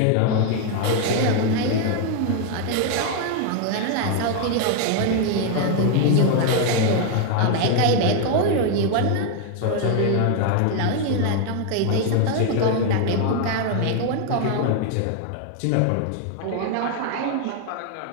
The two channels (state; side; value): different; both; correlation 0.01